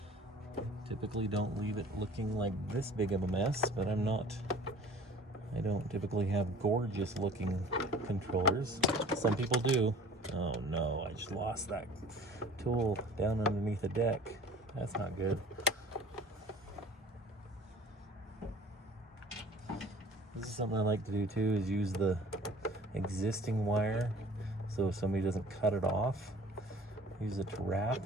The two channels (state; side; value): normal; both; correlation 0.47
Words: Typically don't leave it looking like this big of a mess, but I don't typically have gorgeous looking controllers. Some people do. Oh no, I just lost that tool down underneath the deck. That's not good. This is something I like to do too, is use the existing wire, so if somebody doesn't cut it off, use it to wrap